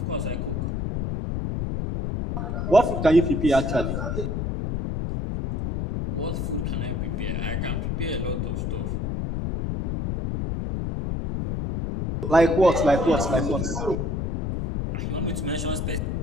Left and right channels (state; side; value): noise; left; rumble, 1 dB below the sound